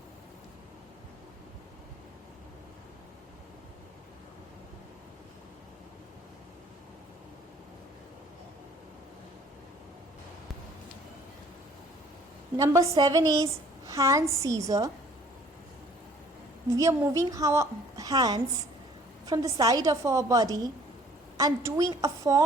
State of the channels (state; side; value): normal; both; correlation 0.56